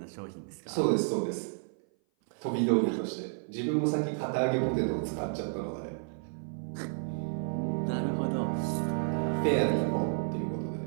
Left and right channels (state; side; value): silent; left; 56 dB below the other